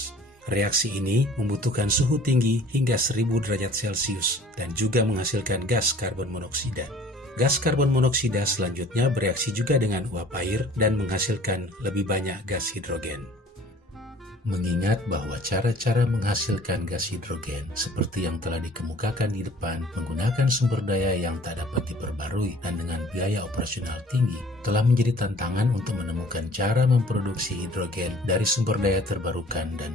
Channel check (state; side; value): normal; both; correlation 0.51